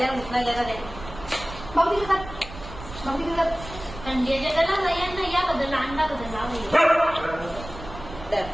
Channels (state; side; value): noise; right; rumble, 13 dB below the sound